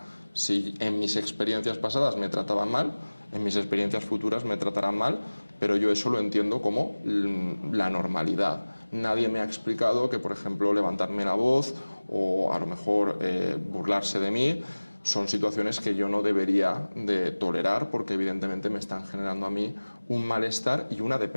Si en mis experiencias pasadas me trataban mal, en mis experiencias futuras me tratarán mal, pero yo eso lo entiendo como la normalidad. Nadie me ha explicado que, por ejemplo, levantarme la voz o a lo mejor burlarse de mí son situaciones que yo no debería de tolerar, porque evidentemente me están generando a mí un malestar y una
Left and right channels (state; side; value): inverted; both; correlation -1.00